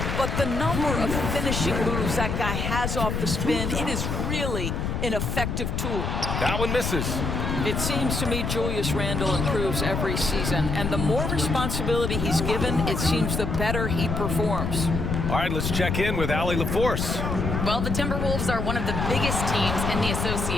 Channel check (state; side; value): noise; left; rumble, 2 dB below the sound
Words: But the number of finishing moves that guy has off the spin, it is really an effective tool. That one misses. It seems to me Julius Randle improves every season, and the more responsibility he's given, it seems the better he performs. All right, let's check in with Allie LaForce. Well, the Timberwolves are one of the biggest teams in the